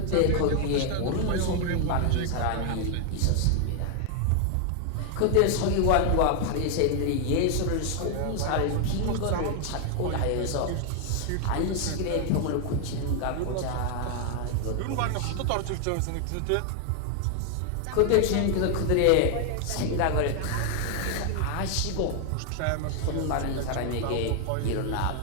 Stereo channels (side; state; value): both; different; correlation 0.00